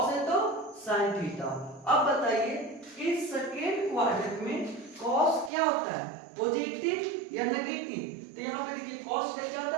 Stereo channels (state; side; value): drops out; left; at 5.5 s